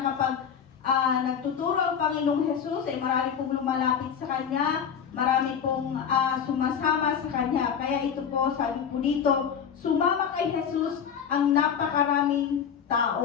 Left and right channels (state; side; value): quieter; right; 7.6 dB